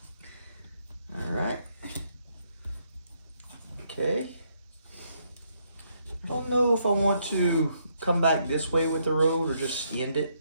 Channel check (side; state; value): both; inverted; correlation -0.74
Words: All right. Okay. I don't know if I want to come back this way with the road or just end